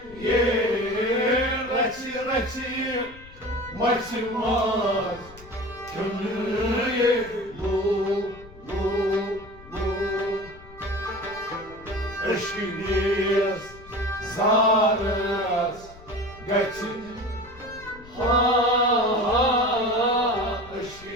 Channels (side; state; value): left; noise; rumble, 20 dB below the sound